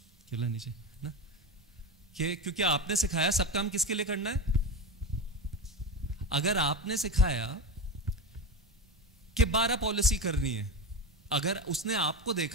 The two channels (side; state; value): both; normal; correlation 0.21